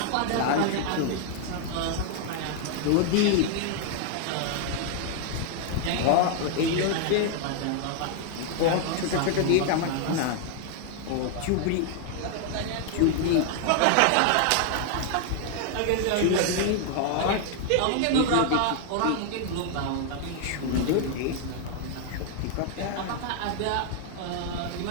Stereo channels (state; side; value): different; both; correlation 0.00